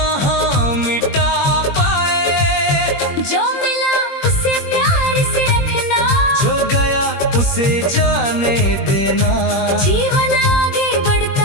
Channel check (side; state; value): right; late; 21 ms